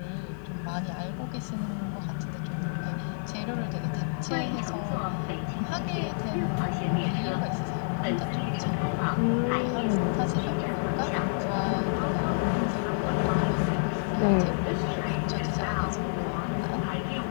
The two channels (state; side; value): silent; right; digital silence